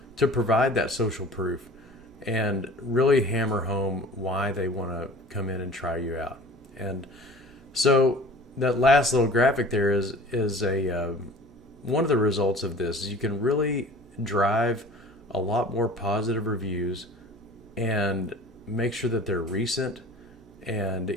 to provide that social proof and really hammer home why they want to come in and try you out. And so that last little graphic there is one of the results of this. Is you can really drive a lot more positive reviews and make sure that they're recent, and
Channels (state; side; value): noise; right; hum, 28 dB below the sound